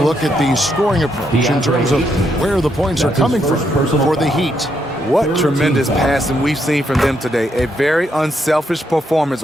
look at the scoring approach in terms of where the points are coming from for the Heat. What tremendous passing we've seen from them today. A very unselfish performance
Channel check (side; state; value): both; normal; correlation 0.77